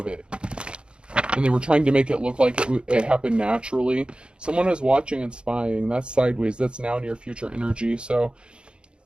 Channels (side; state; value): left; late; 0.054 ms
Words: it. And they were trying to make it look like it happened naturally. Someone is watching and spying. That's sideways. That's now near future energy. So